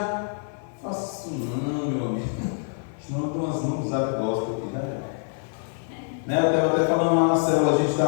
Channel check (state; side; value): silent; right; 61 dB below the other